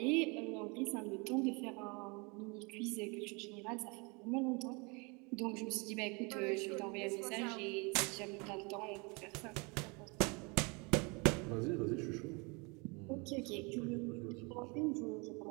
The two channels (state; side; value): quieter; left; 30.0 dB